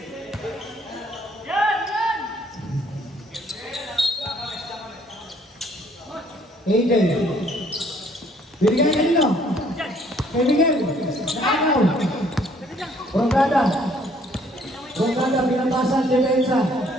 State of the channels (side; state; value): both; normal; correlation 0.62